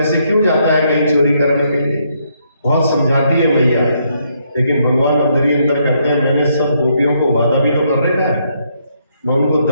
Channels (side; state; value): both; inverted; correlation -0.74